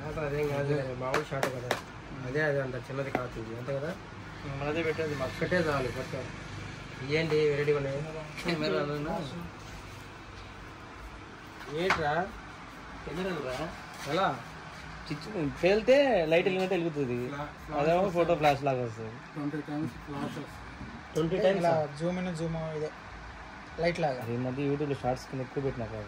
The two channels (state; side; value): identical; both; correlation 1.00